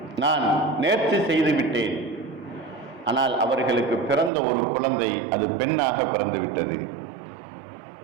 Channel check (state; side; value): drops out; left; at 4.3 s